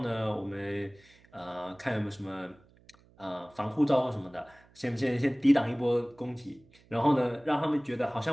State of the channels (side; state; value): right; noise; hum, 29 dB below the sound